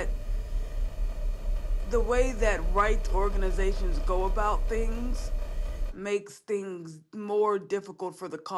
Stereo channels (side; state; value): both; identical; correlation 1.00